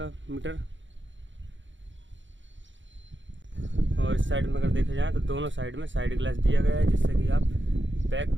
मीटर। और इस साइड में अगर देखा जाए तो दोनों साइड में साइड ग्लास दिया गया है, जिससे कि आप बैक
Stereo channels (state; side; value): late; left; 0.54 ms